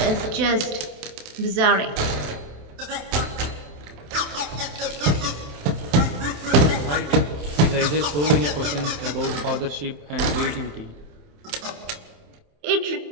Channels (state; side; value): late; left; 27 ms